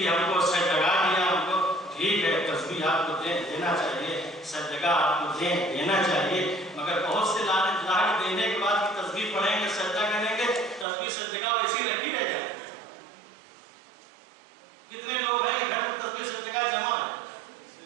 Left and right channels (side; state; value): left; drops out; at 10.9 s